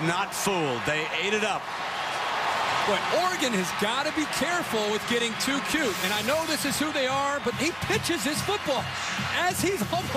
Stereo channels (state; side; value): identical; both; correlation 1.00